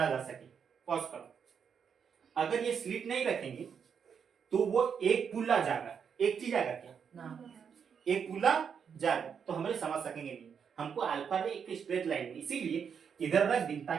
जा सके। पॉज करो। अगर ये स्लिट नहीं रखेंगे तो वो एक पुल्ला जाएगा, एक चीज आएगा क्या ना? एक पुल्ला जाएगा, तो हमें समझ सकेंगे नहीं। हमको अल्फा रे एक स्ट्रेट लाइन में, इसीलिए इधर रख दी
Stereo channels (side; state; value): left; quieter; 7.0 dB